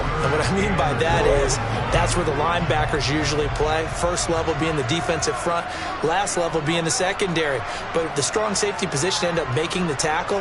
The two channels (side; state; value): both; identical; correlation 1.00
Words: And what I mean by that is that's where the linebackers usually play. First level being the defensive front, last level being the secondary. But the strong safety position ended up making the